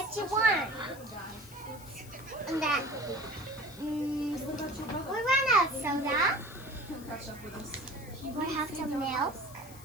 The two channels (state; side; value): noise; left; hiss, 19 dB below the sound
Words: you want? And that. We ran out of soda. We have some milk.